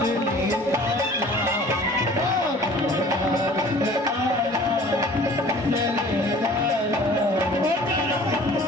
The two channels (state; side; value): normal; both; correlation 0.48